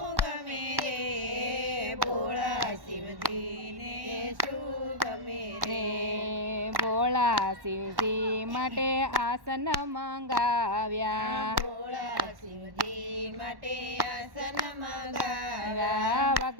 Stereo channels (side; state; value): left; late; 1.1 ms